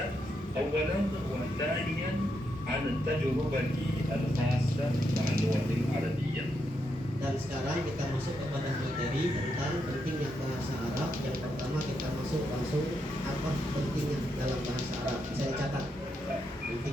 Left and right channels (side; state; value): both; normal; correlation 0.81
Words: أولا، وثانيا عن التجربة الخاصة مع اللغة العربية. Dan sekarang kita masuk kepada materi tentang pentingnya bahasa Arab. Yang pertama kita masuk langsung apa pentingnya dalam bahasa Arab. Bisa dicatat